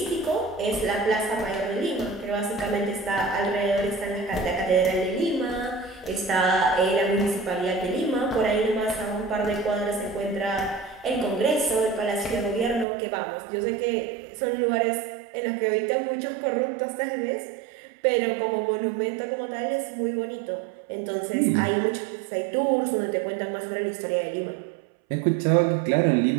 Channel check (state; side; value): drops out; left; at 12.9 s